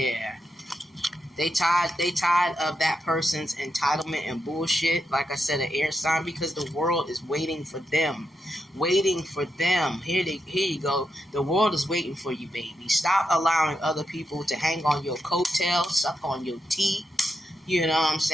They tired of that person's entitlement and bullshit. Like I said, an air sign, because the world is waiting for them. Waiting for them. Here you go. The world is waiting for you, baby. Stop allowing other people to hang on your coattails, suck on your teeth. You know what I'm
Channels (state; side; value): normal; both; correlation 0.84